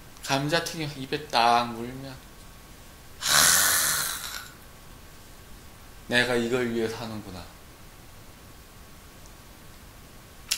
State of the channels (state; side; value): identical; both; correlation 1.00